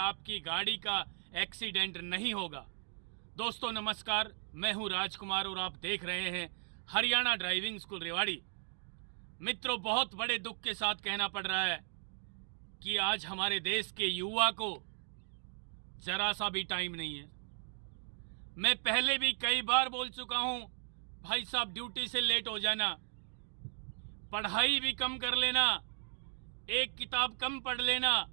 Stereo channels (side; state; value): left; silent; 54 dB below the other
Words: गाड़ी का एक्सीडेंट नहीं होगा। दोस्तों नमस्कार, मैं हूं राजकुमार और आप देख रहे हैं हरियाणा ड्राइविंग स्कूल रेवाड़ी। मित्रों, बहुत बड़े दुख के साथ कहना पड़ रहा है कि आज हमारे देश के युवा को जरा सा भी टाइम नहीं है। मैं पहले भी कई बार बोल चुका हूं, भाई साहब ड्यूटी से लेट हो जाना, पढ़ाई भी कम कर लेना, एक किताब कम पढ़ लेना